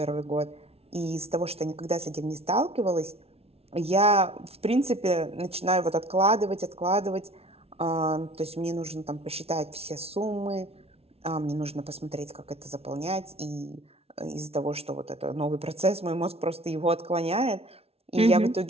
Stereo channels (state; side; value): late; left; 0.30 ms